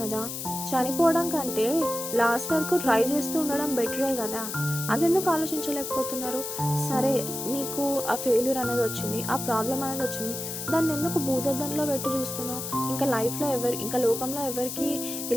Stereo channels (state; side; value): noise; left; hiss, 6 dB below the sound